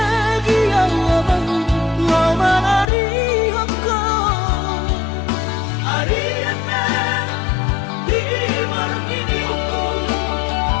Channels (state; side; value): drops out; right; at 2.9 s